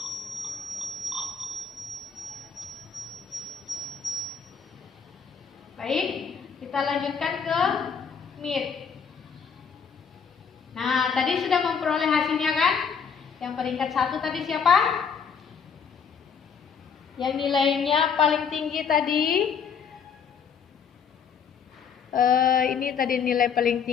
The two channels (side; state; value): right; quieter; 6.5 dB